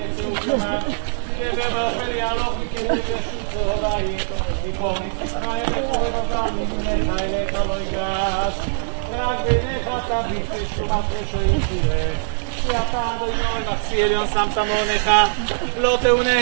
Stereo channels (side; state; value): left; silent; 60 dB below the other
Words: כמם, ובאופן יהלוך מכתב ישוצו בית, יקום יצחק וחורב אותם ממך אליך לא ייגש, רק בעיניך תביט ושומת רשעים תראה. כי אתה אדוני מחסי עליון שמת מעונך, לא